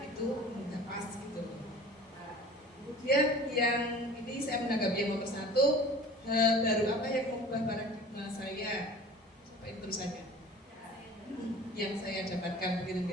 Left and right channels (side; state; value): both; normal; correlation 0.43